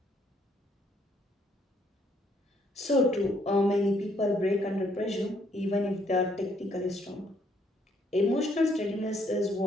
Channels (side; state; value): both; normal; correlation 0.69